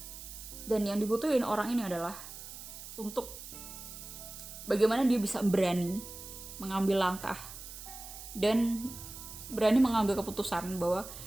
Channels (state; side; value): noise; right; hiss, 12 dB below the sound